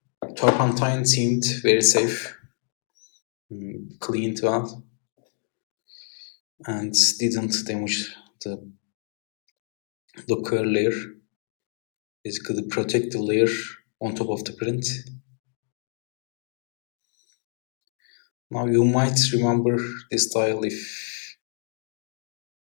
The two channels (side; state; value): right; silent; 60 dB below the other